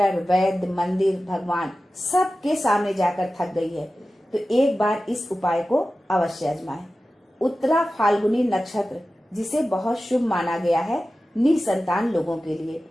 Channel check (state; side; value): normal; both; correlation 0.95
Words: वैद्य, मंदिर, भगवान सबके सामने जाकर थक गई है, तो एक बार इस उपाय को अवश्य आजमाएं। उत्तरा फाल्गुनी नक्षत्र, जिसे बहुत शुभ माना गया है निसंतान लोगों के लिए।